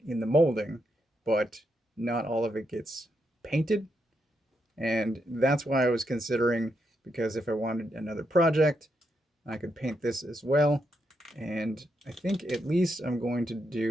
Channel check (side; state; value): both; normal; correlation 0.81